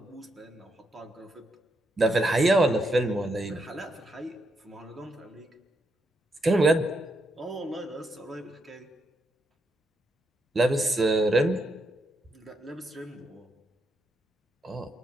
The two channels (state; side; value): normal; both; correlation 0.80